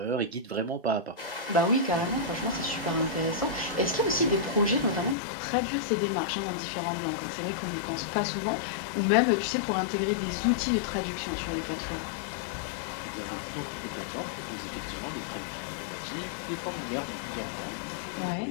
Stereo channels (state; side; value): drops out; right; at 5.2 s